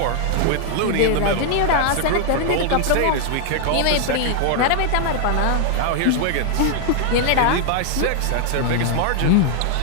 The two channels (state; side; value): different; both; correlation 0.00